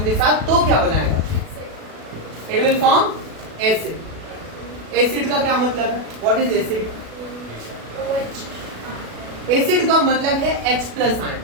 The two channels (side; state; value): left; late; 37 ms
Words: के साथ तो क्या बनाएगा, it will form acid. Acid का क्या मतलब है, व्हाट इज एसिड? एसिड का मतलब है H प्लस आयन।